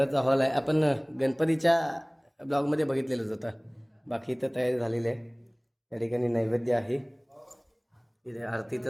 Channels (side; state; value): both; identical; correlation 1.00